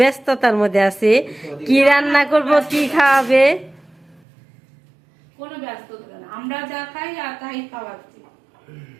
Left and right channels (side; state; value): left; drops out; at 4.2 s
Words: ব্যস্ততার মধ্যে আছে, কি রান্না করব কি খাওয়াবে। কোনো ব্যস্ততা না, আমরা যা খাই আর তাই খাওয়াচ্ছি।